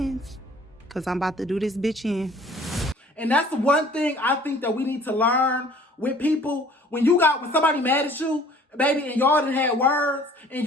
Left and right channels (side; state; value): both; normal; correlation 0.53